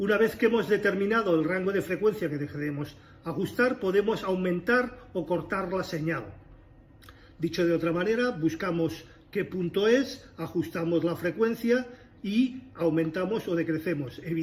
vez que hemos determinado el rango de frecuencia que queremos ajustar, podemos aumentar o cortar la señal. Dicho de otra manera, buscamos qué punto es, ajustamos la frecuencia y aumentamos o decrecemos.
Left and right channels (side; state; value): both; identical; correlation 1.00